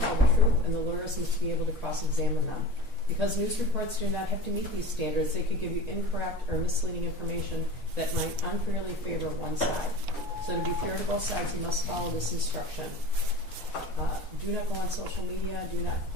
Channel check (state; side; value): normal; both; correlation 0.34